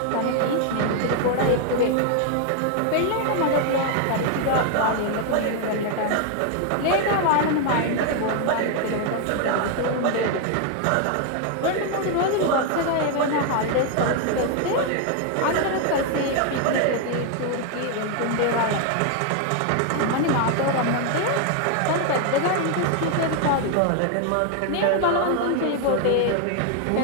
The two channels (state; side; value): different; both; correlation 0.00